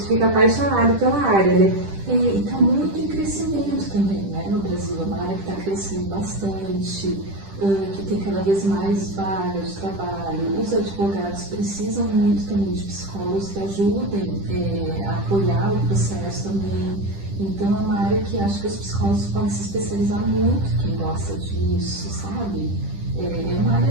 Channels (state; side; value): late; left; 10 ms